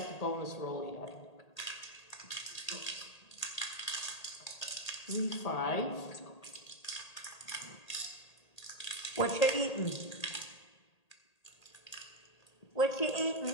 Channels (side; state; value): right; late; 1.8 ms